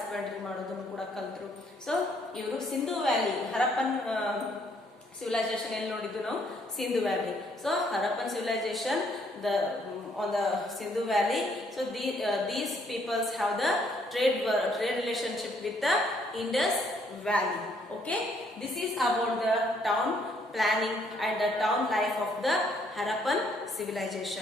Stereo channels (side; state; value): both; normal; correlation 0.68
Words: ಮಾಡೋದನ್ನು ಕೂಡ ಕಲ್ತರು. ಸೊ ಇವರು ಸಿಂಧು ವ್ಯಾಲಿ, ಹರಪ್ಪನ್ civilization ಎಲ್ಲಿ ನೋಡಿದ್ದು ನಾವು? Sindhu valley. So Harappan civilization on the Sindhu Valley. So these peoples have the trade relationship with the Indus Valley. Okay, this is about the town planning and the town life of the Harappan